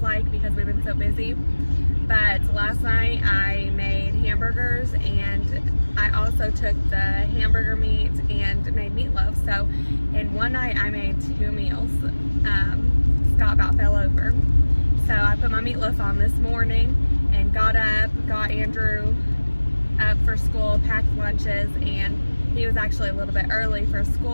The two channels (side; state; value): both; inverted; correlation -1.00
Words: because we've been so busy. But last night I made hamburgers, and I also took the hamburger meat and made meatloaf. So in one night I made 2 meals. Scott about fell over. So I put my meatloaf on this morning and got up, got Andrew up for school, packed lunches, and he was actually a little bit early for